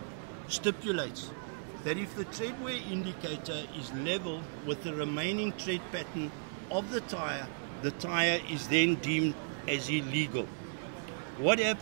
stipulates that if the tread wear indicator is level with the remaining tread pattern of the tyre is then deemed as illegal. What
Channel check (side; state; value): left; silent; digital silence